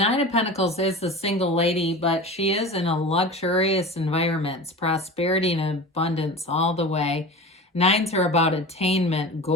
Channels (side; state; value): both; normal; correlation 0.33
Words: of Pentacles is the single lady, but she is in a luxurious environment. It's prosperity and abundance all the way. 9s are about attainment,